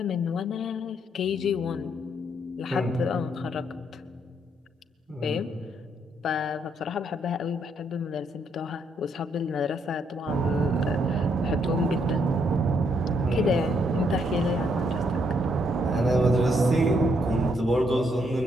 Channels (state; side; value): normal; both; correlation 0.73